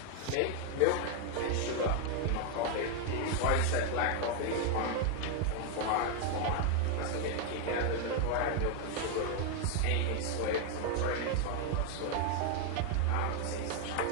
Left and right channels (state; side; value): different; both; correlation 0.00